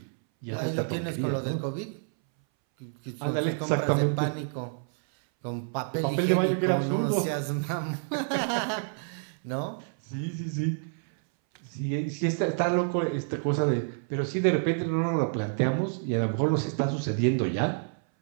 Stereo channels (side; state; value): left; silent; 59 dB below the other